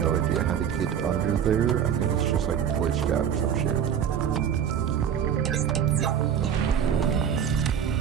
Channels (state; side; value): quieter; left; 8.5 dB